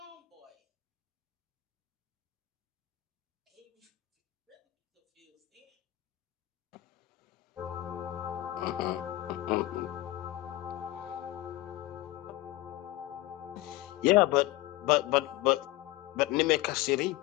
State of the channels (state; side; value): quieter; right; 17.1 dB